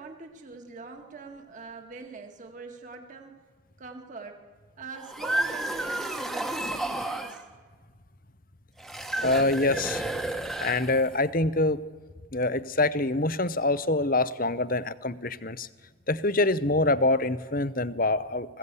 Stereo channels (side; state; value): both; normal; correlation 0.08